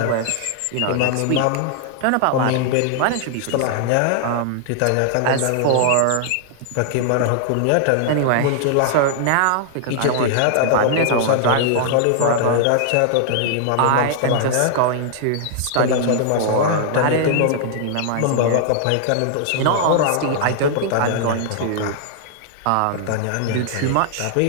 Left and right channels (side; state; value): both; different; correlation -0.01